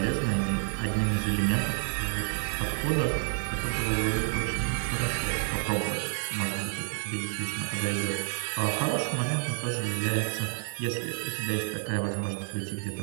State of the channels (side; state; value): left; silent; 58 dB below the other